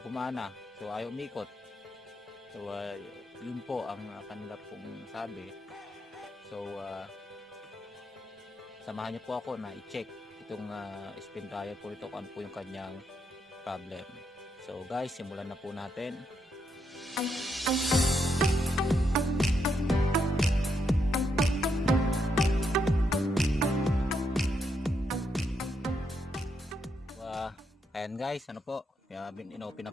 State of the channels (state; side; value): normal; both; correlation 0.79